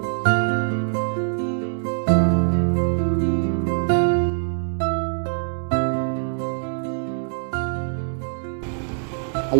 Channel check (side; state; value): left; silent; digital silence